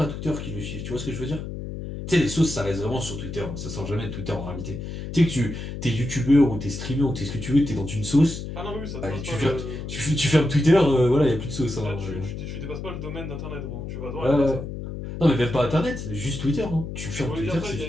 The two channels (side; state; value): left; noise; hum, 7 dB below the sound